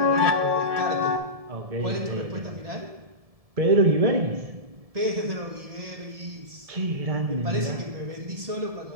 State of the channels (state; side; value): late; left; 1.7 ms